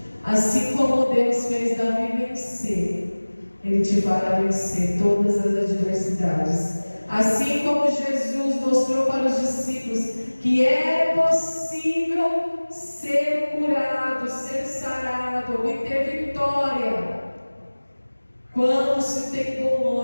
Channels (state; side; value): inverted; both; correlation -1.00